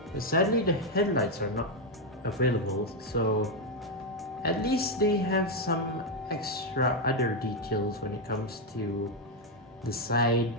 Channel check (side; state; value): both; normal; correlation 0.04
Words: But sadly, the headlights are not available, so at least they have some extra other details when it comes to the side,